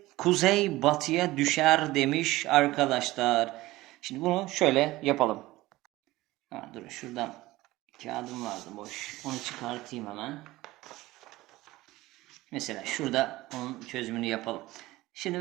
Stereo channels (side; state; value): left; quieter; 18.3 dB